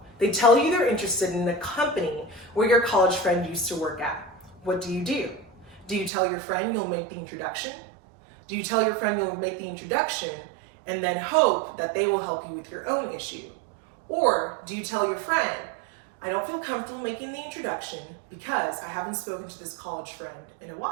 They tell you they're interested in the company where your college friend used to work at. What do? Do you tell your friend you'll make the introduction? Do you tell your friend you'll make the introduction and then hope that they will help you with your own issue? Or do you tell your friend, I don't feel comfortable making the introduction because I haven't spoken to this college friend in a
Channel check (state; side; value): drops out; left; at 6.1 s